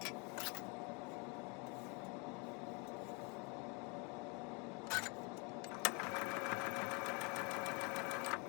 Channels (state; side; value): quieter; right; 32.2 dB